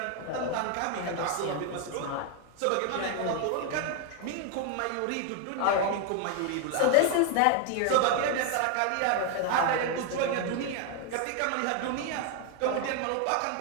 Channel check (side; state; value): both; different; correlation 0.01